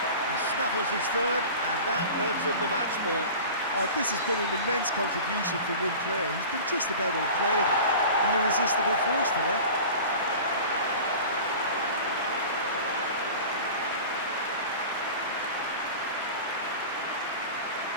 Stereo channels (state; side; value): inverted; both; correlation -0.37